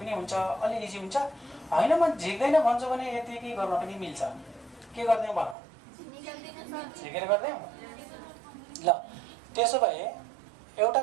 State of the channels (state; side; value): drops out; left; at 5.6 s